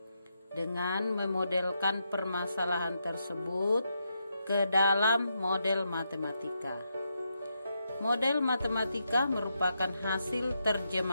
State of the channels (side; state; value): both; inverted; correlation -0.82